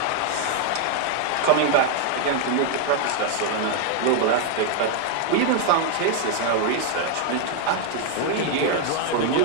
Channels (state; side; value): different; both; correlation 0.00